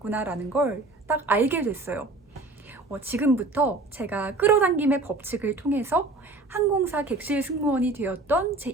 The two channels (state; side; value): quieter; left; 3.1 dB